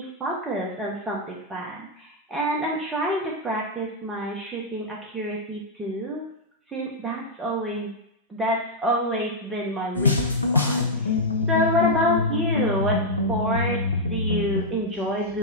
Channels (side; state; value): both; normal; correlation -0.05